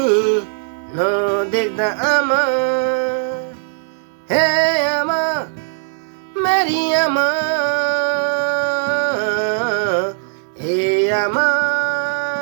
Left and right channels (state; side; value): silent; left; 61 dB below the other